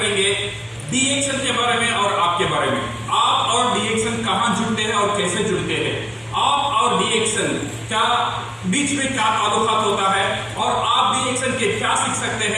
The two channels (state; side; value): identical; both; correlation 1.00